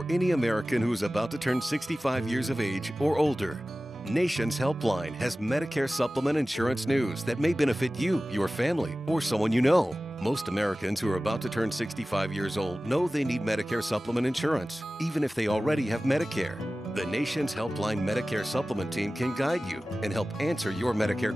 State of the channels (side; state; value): both; normal; correlation 0.96